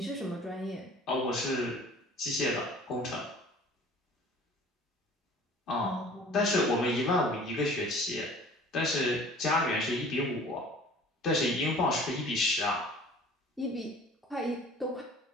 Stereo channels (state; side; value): normal; both; correlation 0.48